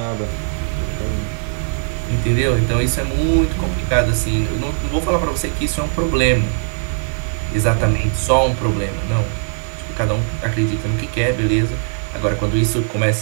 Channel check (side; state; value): left; silent; 66 dB below the other